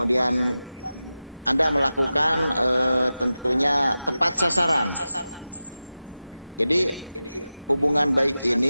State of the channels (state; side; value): inverted; both; correlation -0.94